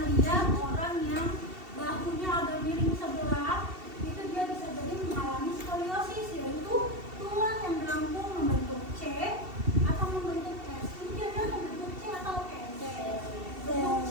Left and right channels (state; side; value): late; left; 2.7 ms